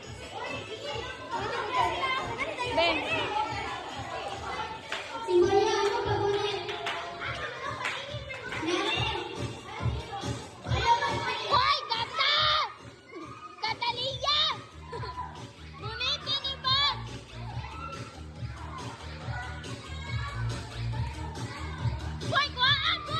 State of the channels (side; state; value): both; identical; correlation 1.00